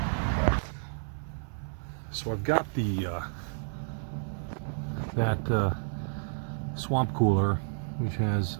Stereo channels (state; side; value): silent; left; 57 dB below the other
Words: So I've got the that swamp cooler, which has